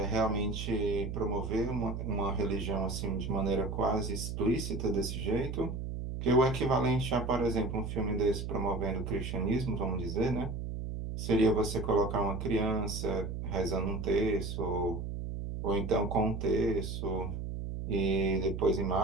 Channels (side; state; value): right; noise; hum, 5 dB below the sound